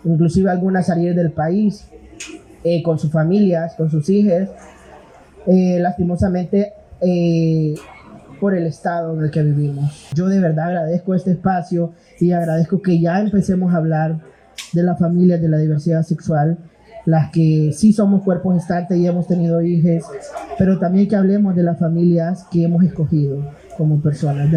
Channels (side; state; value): both; identical; correlation 1.00